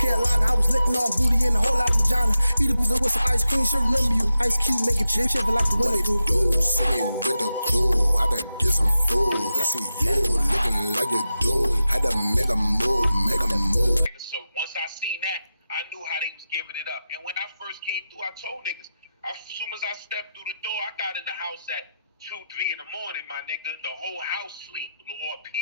Carolina. I was licking on booty and a whole lot of vagina. Eat a boozer with some ice cream. She'll remember you. Ice Cube making chip shiver like the winter do. See me with the crew. I done get some food. I see you looking like you do. Had to make a move, So once I seen that, I knew how they was giving it up. And when I first came through, I told niggas, as soon as I stepped through the door, I got in the house at 2, 3 in the morning, my nigga. The whole house sleep, or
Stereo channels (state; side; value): inverted; both; correlation -0.91